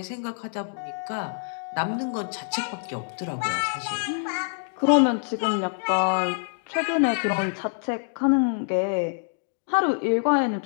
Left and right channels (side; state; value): right; silent; digital silence